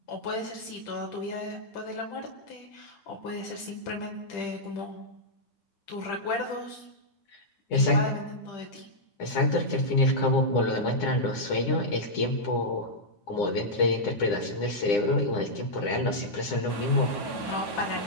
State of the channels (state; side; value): late; right; 9.9 ms